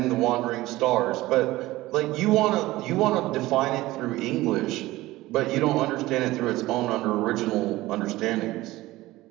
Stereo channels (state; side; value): quieter; left; 17.9 dB